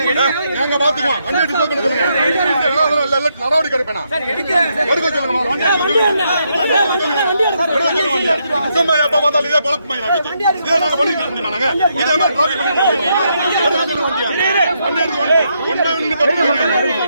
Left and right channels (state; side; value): inverted; both; correlation -0.78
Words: நாங்க பாத்துக்குவோம், நடவடிக்கை எடுப்பேன். சும்மா எப்ப பார்த்தாலும் இதே பழக்கம் இதே நாங்க பண்ணிட்டு இருக்க முடியுமா? நாங்க இதே மாதிரி டிராபிக் பண்ணிட்டு